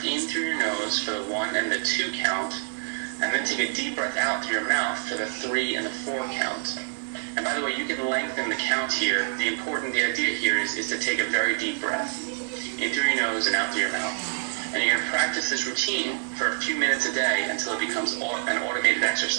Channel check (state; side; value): silent; left; digital silence